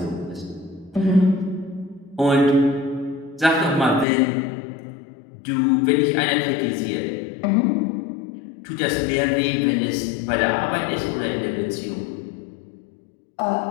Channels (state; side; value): drops out; right; at 4.0 s